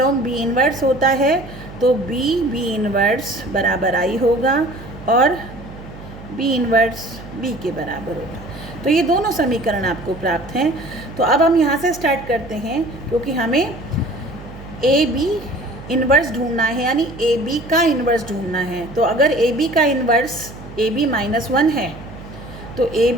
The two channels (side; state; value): right; noise; hum, 15 dB below the sound